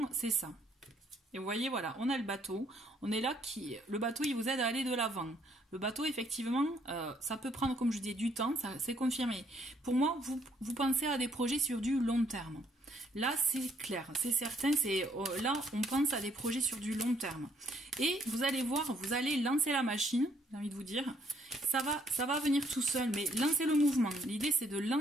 c'est ça. Et vous voyez, voilà, on a le bateau. On est là, le bateau, il vous aide à aller de l'avant. Le bateau, effectivement, ça peut prendre, comme je dis, du temps, c'est confirmé. Pour moi, vous pensez à des projets sur du long terme. Là, c'est clair, c'est certain, là, on pense à des projets sur du long terme. Et vous allez voir, vous allez lancer la machine, j'ai envie de vous dire. Ça va venir tout seul, mais lancez le mouvement. L'idée, c'est de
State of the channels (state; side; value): normal; both; correlation 0.68